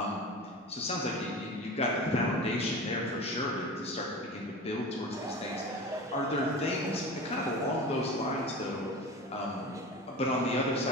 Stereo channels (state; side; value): normal; both; correlation 0.32